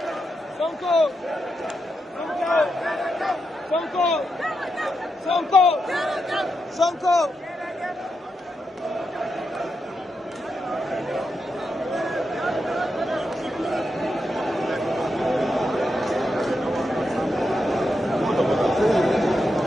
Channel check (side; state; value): both; normal; correlation 0.85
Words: Sonko Sonko Sonko Sonko